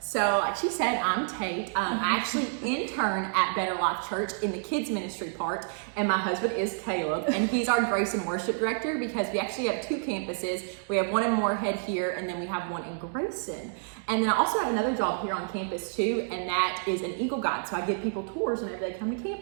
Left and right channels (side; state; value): left; silent; digital silence